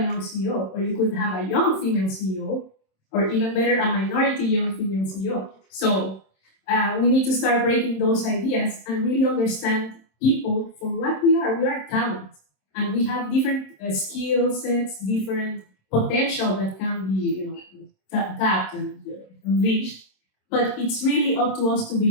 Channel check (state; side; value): late; right; 26 ms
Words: young CEO, or you could have a young female CEO, or even better, a minority young female CEO. So we need to start breaking those ideas and really understand people for what we are. We are talent, and we have different skill sets, different potential that can be, tapped and unleashed. But it's really up to us to